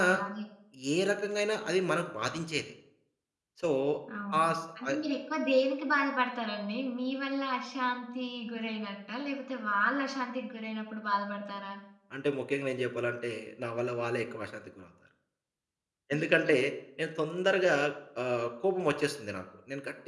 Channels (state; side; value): identical; both; correlation 1.00